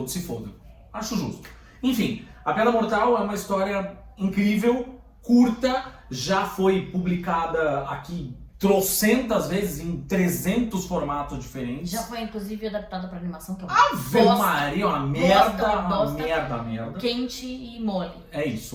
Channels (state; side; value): identical; both; correlation 1.00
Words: se fodam. Acho justo. Enfim, A Piada Mortal é uma história incrível, curta, já foi publicada aqui trocentas vezes em 300 formatos diferentes. Já foi, inclusive, adaptada pra animação, que é uma Ave Maria, uma merda. Quente e mole. É